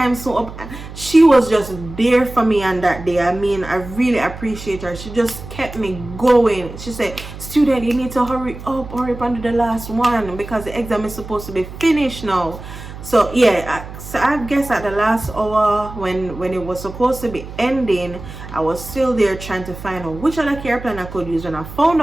so up. She was just there for me on that day. I mean, I really appreciate her. She just kept me going. She said, student, you need to hurry up under the last one because the exam is supposed to be finished now. So yeah, so I guess at the last hour when it was supposed to be ending, I was still there trying to find out which other care plan I could use. When I found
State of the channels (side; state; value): right; noise; hum, 13 dB below the sound